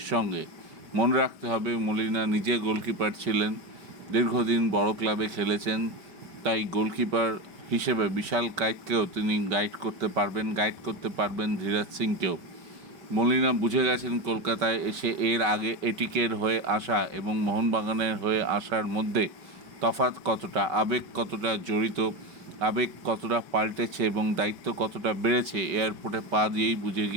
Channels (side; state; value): left; late; 5.0 ms